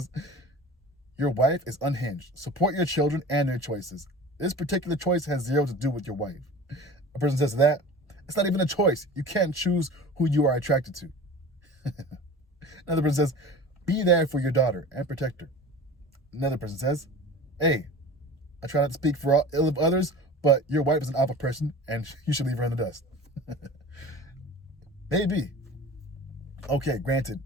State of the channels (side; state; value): both; normal; correlation 0.38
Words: your wife is unhinged. Support your children and their choices. This particular choice has zero to do with your wife. A person says that, it's not even a choice. You can't choose who you are attracted to. Another person says, be there for your daughter and protect her. Another person says, hey, I try not to speak for ill of others, but your wife is an awful person and you should leave her in the dust. Maybe. Okay, granted.